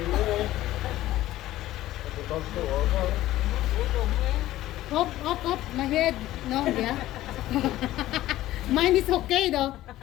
Up, my head. No, yeah. Mine is okay though.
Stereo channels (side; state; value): right; quieter; 15.1 dB